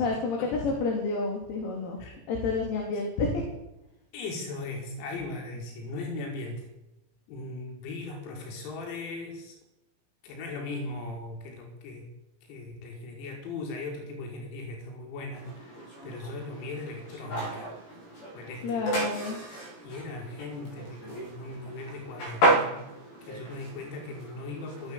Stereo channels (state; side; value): late; right; 17 ms